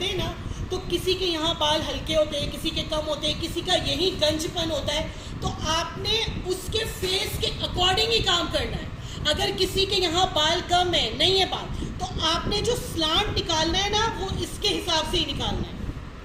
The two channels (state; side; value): identical; both; correlation 1.00